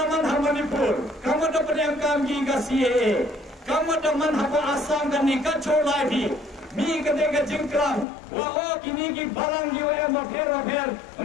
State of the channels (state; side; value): drops out; right; at 8.1 s